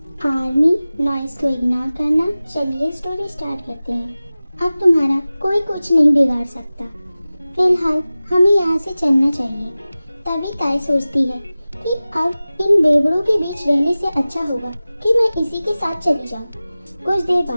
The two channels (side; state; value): both; inverted; correlation -0.97